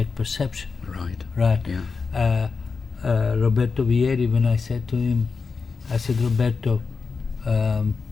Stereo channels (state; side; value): quieter; right; 4.9 dB